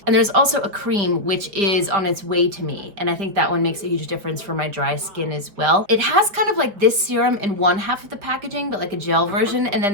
And there's also a cream which is on its way to me, and I think that one makes a huge difference for my dry skin as well. It has kind of like this serum in one half of the packaging, but like a gel version, and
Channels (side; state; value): left; late; 4.8 ms